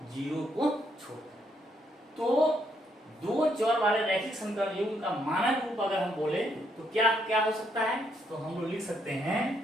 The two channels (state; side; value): normal; both; correlation 0.74